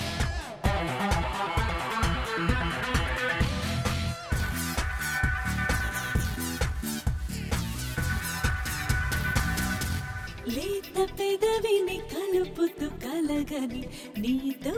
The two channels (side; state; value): both; identical; correlation 1.00